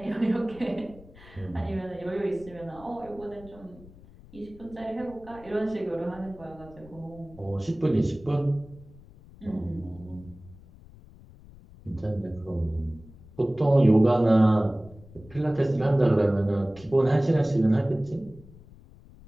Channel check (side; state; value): left; noise; rumble, 21 dB below the sound